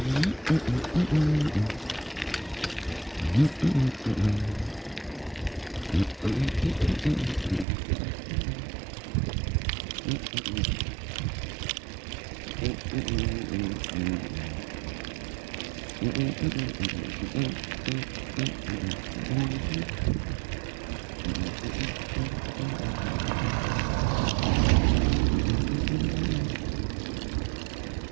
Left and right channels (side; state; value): left; drops out; at 7.7 s